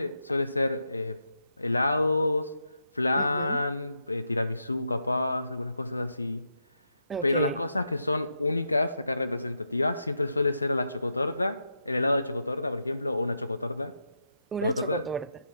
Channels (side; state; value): both; inverted; correlation -0.85